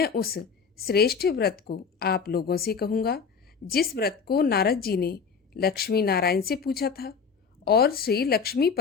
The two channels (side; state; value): right; quieter; 5.8 dB